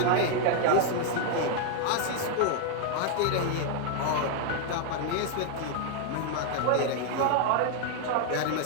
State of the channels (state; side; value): different; both; correlation 0.00